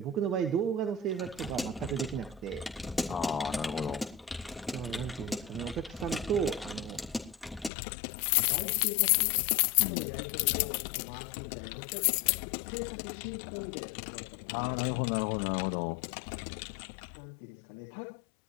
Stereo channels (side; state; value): right; drops out; at 7.7 s